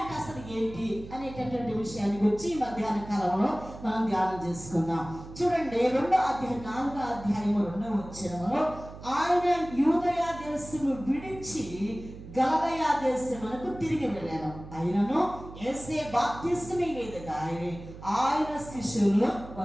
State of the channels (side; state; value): right; noise; hum, 14 dB below the sound